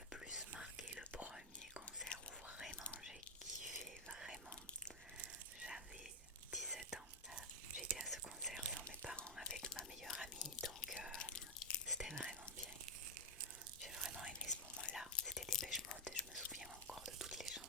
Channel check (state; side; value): normal; both; correlation 0.01